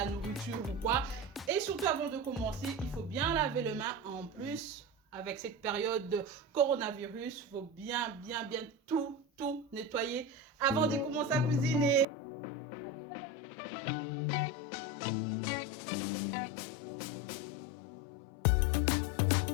nourriture ou quoi. Et surtout, avant de commencer, il faut bien laver les mains. En plus, avec cette période de coronavirus, il faut bien tout nettoyer avant de commencer à cuisiner. À tout à l'heure.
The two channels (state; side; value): drops out; right; at 12.1 s